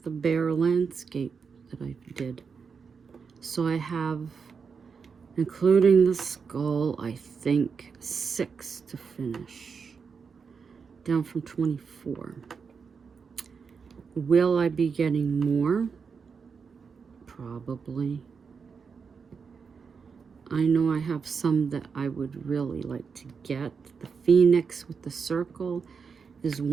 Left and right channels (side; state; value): left; quieter; 5.7 dB